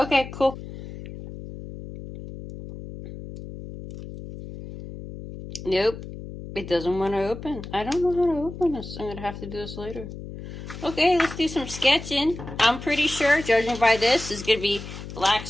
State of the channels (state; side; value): noise; left; hum, 11 dB below the sound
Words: cool. Nope. It doesn't want to open. I don't know how to open this. I'm going to have to do this later. Okay, let's do some sketching. I'm pretty sure, judging by this, is going to be black